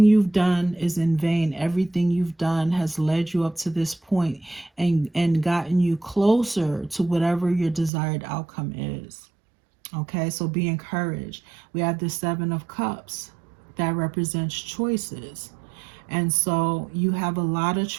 you've done is in vain. Everything you've done has led you up to this point and gotten you closer to whatever your desired outcome is. Okay, so be encouraged. We have the 7 of Cups that represents choices. And so you have a lot of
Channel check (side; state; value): left; drops out; at 7.9 s